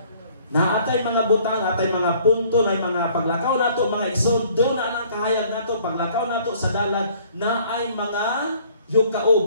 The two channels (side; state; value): both; inverted; correlation -0.57